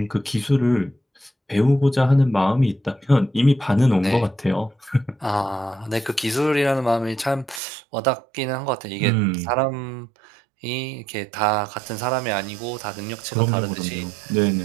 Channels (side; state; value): left; drops out; at 7.6 s